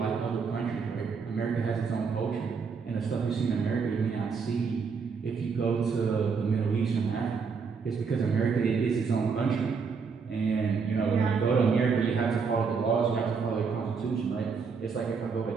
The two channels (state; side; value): quieter; left; 5.5 dB